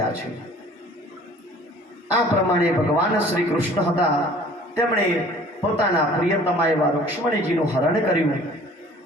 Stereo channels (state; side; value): normal; both; correlation 0.50